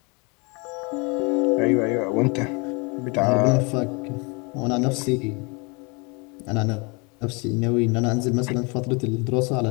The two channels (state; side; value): quieter; right; 30.6 dB